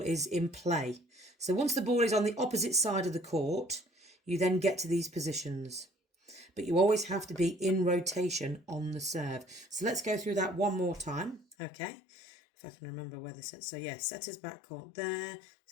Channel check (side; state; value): right; drops out; at 11.6 s